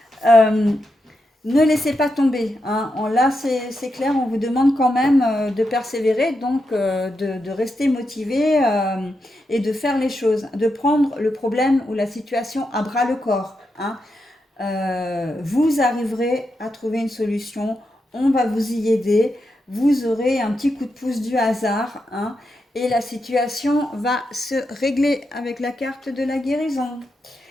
Euh, Ne laissez pas tomber, hein. Là, c'est clair, on vous demande quand même de persévérer, donc de rester motivé et de faire les choses, de prendre le problème ou la situation à bras le corps, hein. Vous arriverez à trouver une solution, on va vous y aider, vous aurez un petit coup de pouce du hasard, hein, et la situation va se régler avec la carte de la guérison.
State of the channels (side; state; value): both; normal; correlation 0.85